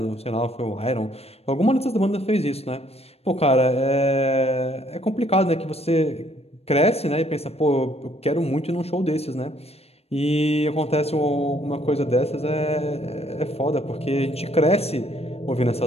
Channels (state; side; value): late; right; 0.29 ms